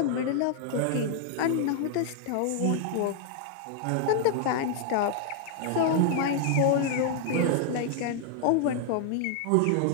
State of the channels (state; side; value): different; both; correlation 0.00